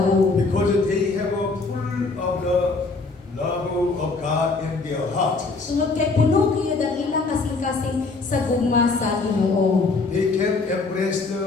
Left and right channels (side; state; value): right; quieter; 3.8 dB